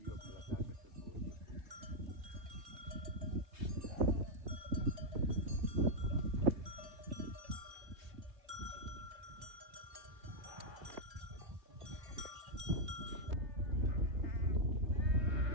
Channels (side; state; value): left; late; 3.2 ms